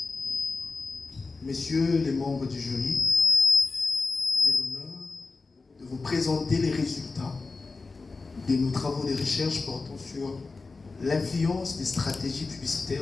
Messieurs les membres du jury, j'ai l'honneur de vous présenter les résultats de nos travaux de recherche portant sur l'influence des stratégies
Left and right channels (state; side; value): quieter; right; 4.0 dB